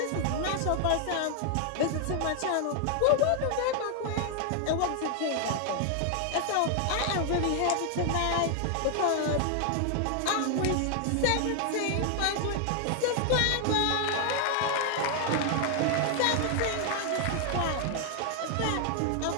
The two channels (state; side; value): different; both; correlation 0.00